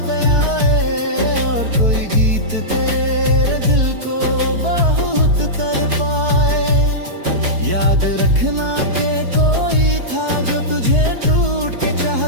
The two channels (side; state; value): left; late; 4.6 ms